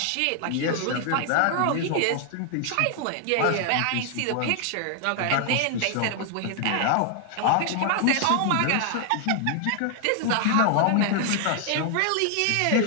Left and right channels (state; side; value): different; both; correlation 0.00